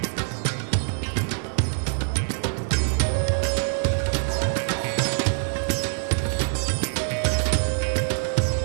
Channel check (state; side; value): silent; left; 62 dB below the other